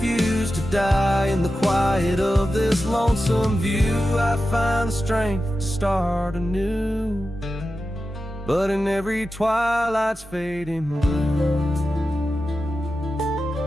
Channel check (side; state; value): both; normal; correlation 0.92